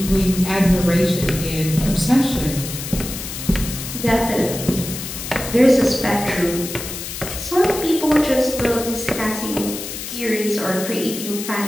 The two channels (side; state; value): left; noise; hiss, 8 dB below the sound